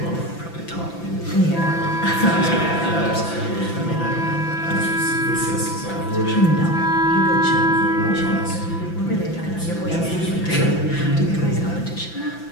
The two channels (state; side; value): late; right; 5.9 ms